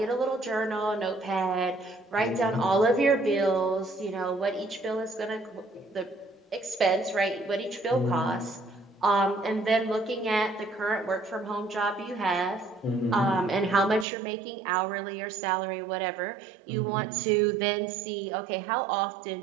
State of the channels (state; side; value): drops out; left; at 14.1 s